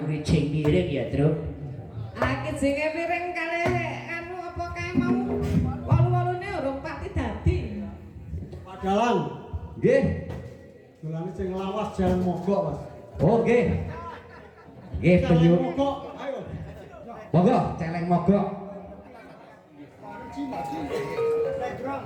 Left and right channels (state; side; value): identical; both; correlation 1.00